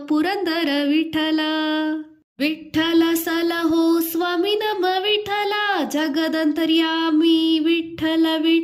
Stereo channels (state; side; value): identical; both; correlation 1.00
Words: ಪುರಂದರ ವಿಠ್ಠಲ. ವಿಠ್ಠಲ ಸಲಹೋ ಸ್ವಾಮಿ ನಮ ವಿಠ್ಠಲ, ಜಗದಂತರ್ಯಾಮಿ ವಿಠ್ಠಲ